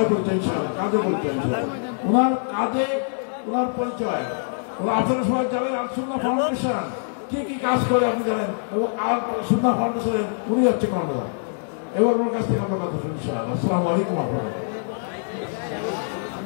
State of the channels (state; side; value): silent; right; digital silence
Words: বলতে ইনশাআল্লাহ, কাজে বলতে ওনার কাজে, ওনার পরিচয়, ওরা আপনারা সবাই জানেন আল-সুন্নাহ ফাউন্ডেশন কি কি কাজ করে আপনি জানেন, এবং আল-সুন্নাহ ফাউন্ডেশনের উনি হচ্ছে কর্মকর্তা। এবার ওনার কাছ থেকে আমরা কথা শুনি ইনশাআল্লাহ। আসসালামু আলাইকুম।